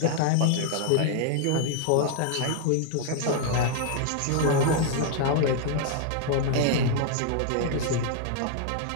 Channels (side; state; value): both; different; correlation -0.01